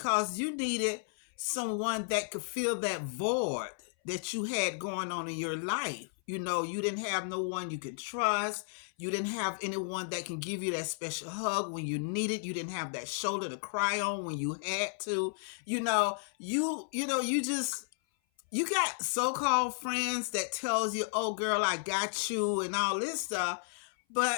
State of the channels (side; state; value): right; silent; 56 dB below the other